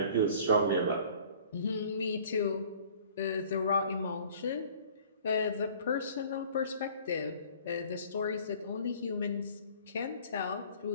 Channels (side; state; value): both; inverted; correlation -0.51